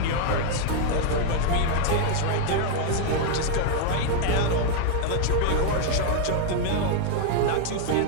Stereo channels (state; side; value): different; both; correlation 0.00